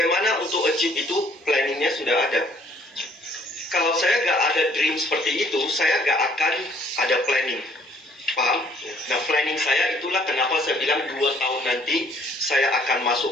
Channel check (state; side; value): normal; both; correlation 0.61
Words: untuk achieve itu, planningnya sudah ada. Kalau saya gak ada dream seperti itu, saya gak akan ada planning. Paham? Nah, planning saya itulah kenapa saya bilang 2 tahun nanti saya akan